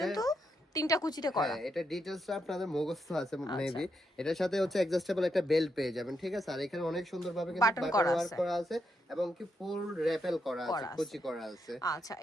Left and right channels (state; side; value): normal; both; correlation 0.81